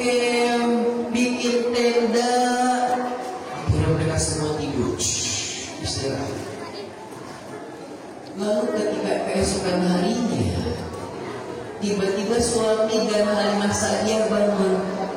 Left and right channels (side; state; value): both; identical; correlation 1.00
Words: bikin tenda. Akhirnya mereka semua tidur, istirahat. Lalu ketika keesokan harinya, tiba-tiba suami dan Halimah Sa'diyah bangun.